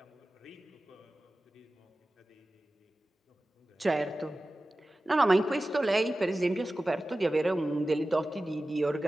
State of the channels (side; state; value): both; normal; correlation 0.96